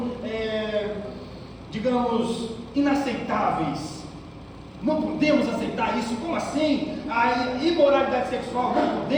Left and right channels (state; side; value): identical; both; correlation 1.00